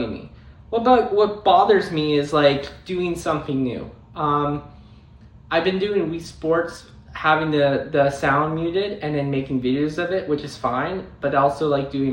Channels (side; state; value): both; identical; correlation 1.00